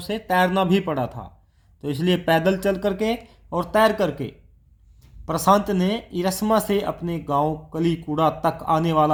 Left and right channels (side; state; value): both; identical; correlation 1.00